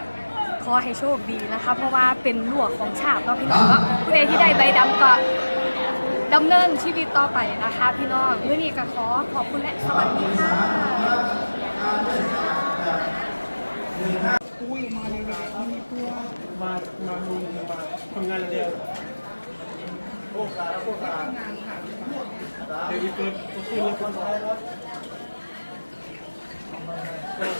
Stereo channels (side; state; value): both; inverted; correlation -1.00